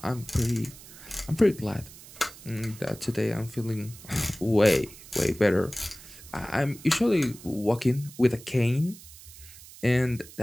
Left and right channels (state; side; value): noise; right; hiss, 18 dB below the sound